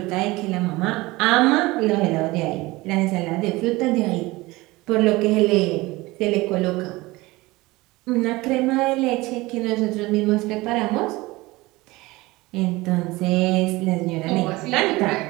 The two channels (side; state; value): left; quieter; 20.9 dB